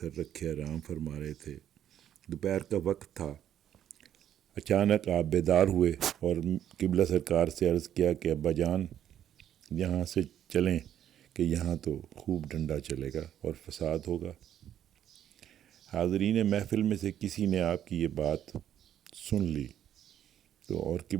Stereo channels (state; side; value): quieter; left; 10.5 dB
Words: رکھے آرام فرما رہے تھے۔ دوپہر کا وقت تھا۔ اچانک آپ بیدار ہوئے اور قبلہ سرکار سے عرض کیا کہ ابا جان یہاں سے چلیں کہ یہاں تو خوب ڈنڈا چلے گا اور فساد ہوگا۔ حاضرین محفل میں سے کسی نے آپ کی یہ بات سن لی تو اور